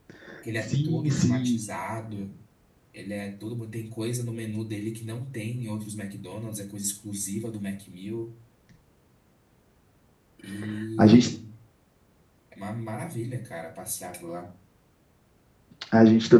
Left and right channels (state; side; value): identical; both; correlation 1.00